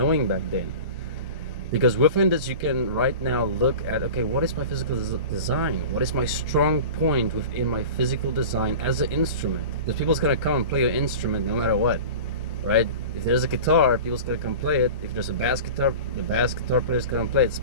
back then. Because within this you can right now look at, okay, what is my physical design? What is my strong point within my physical design as an instrument? Because people's gonna come and play your instrument no matter what, right? If there's a guitar, people's gonna come play it. If there's a bass guitar, the bass guitar player's gonna play it.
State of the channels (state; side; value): inverted; both; correlation -0.34